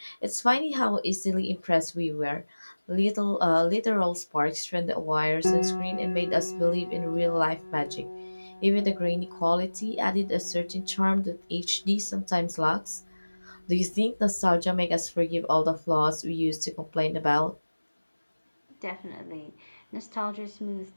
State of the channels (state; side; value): inverted; both; correlation -1.00